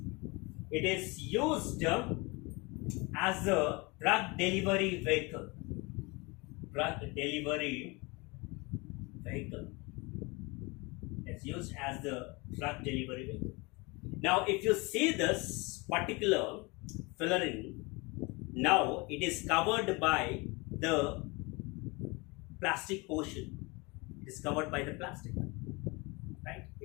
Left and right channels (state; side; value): quieter; right; 26.5 dB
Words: it is used as a drug delivery vehicle. It's used as the drug delivery vehicle. Now, if you see this particular fullerene, now it is covered by the plastic portion. It is covered by the plastic. Right?